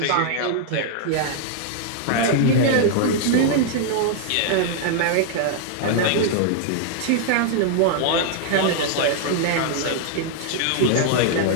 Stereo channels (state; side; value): different; both; correlation -0.01